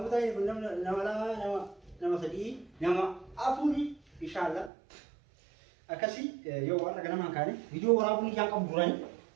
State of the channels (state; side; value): drops out; left; at 4.7 s